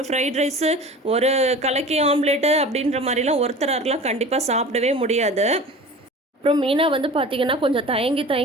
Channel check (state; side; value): normal; both; correlation 0.38